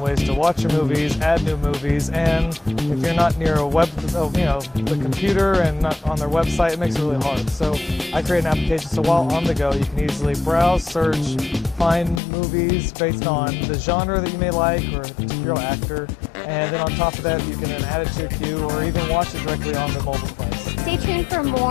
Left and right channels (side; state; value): right; drops out; at 12.2 s